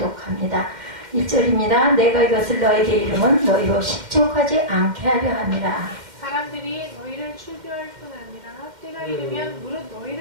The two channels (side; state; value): left; late; 2.1 ms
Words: 1절입니다. 내가 이것을 너에게 이름은 너희로 실족하지 않게 하려 함이라. 사람들이 너희를 출교할 뿐 아니라 때가 이르면 무릇